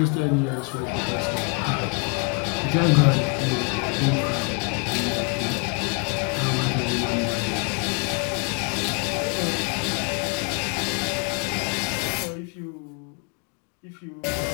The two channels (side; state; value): right; quieter; 34.4 dB